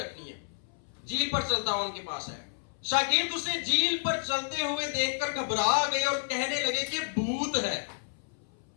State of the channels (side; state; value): right; silent; 58 dB below the other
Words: ہیں۔ جھیل پر چلتا ہوا ان کے پاس آیا۔ شاگرد اسے جھیل پر چلتے ہوئے دیکھ کر گھبرا گئے اور کہنے لگے کہ بھوت ہے،